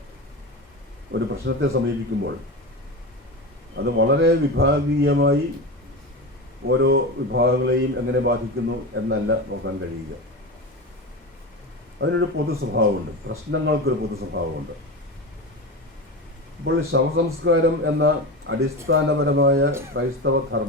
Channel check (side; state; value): both; normal; correlation 0.24